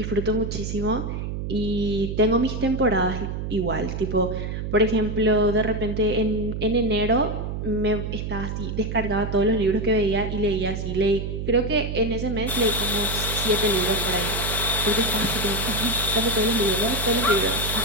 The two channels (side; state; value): right; noise; hum, 4 dB below the sound